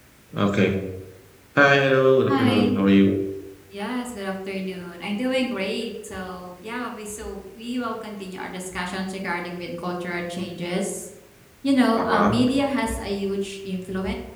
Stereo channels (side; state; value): both; identical; correlation 1.00